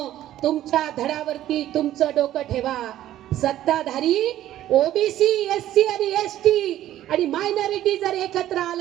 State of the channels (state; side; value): quieter; left; 13.1 dB